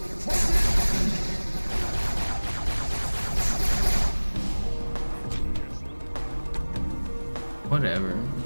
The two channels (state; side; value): inverted; both; correlation -1.00